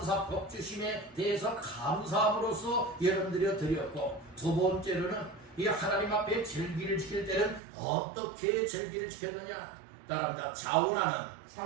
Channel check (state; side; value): drops out; left; at 7.6 s